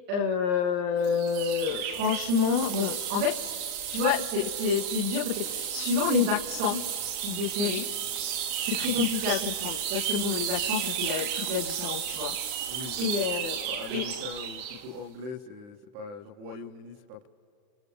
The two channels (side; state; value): left; late; 39 ms